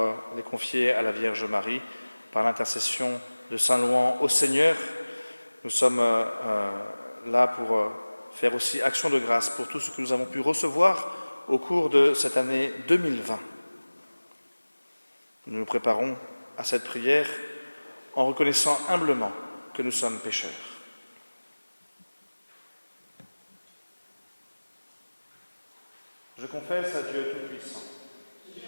les confier à la Vierge Marie par l'intercession de Saint Louan au Seigneur. Nous sommes là pour faire aussi action de grâce pour tout ce que nous avons pu recevoir au cours de cette année 2020. Nous nous préparons à cette prière en reconnaissant humblement que nous sommes pécheurs. Je confesse à Dieu Tout-Puissant,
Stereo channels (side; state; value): both; inverted; correlation -1.00